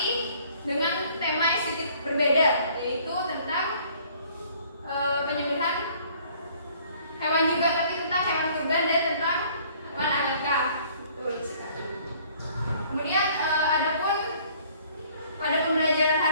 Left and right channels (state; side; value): inverted; both; correlation -0.57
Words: dengan tema yang sedikit berbeda, yaitu tentang penyembelihan hewan juga, tapi tentang hewan kurban dan tentang hewan akikah. Betul sekali. Kemudian adapun pada pembelajaran